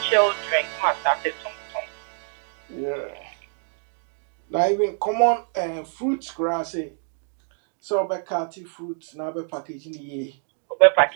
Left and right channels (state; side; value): silent; left; 61 dB below the other